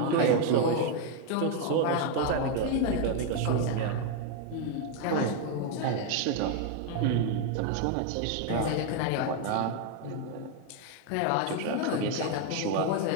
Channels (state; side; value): different; both; correlation 0.01